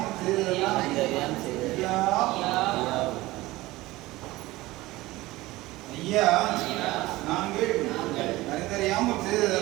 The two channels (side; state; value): left; quieter; 18.9 dB